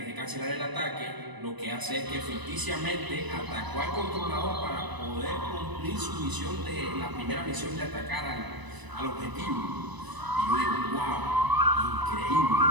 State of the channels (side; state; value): left; late; 1.0 ms